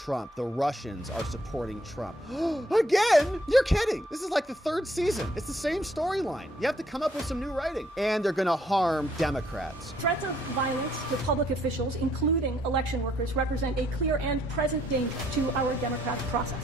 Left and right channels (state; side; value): normal; both; correlation 0.68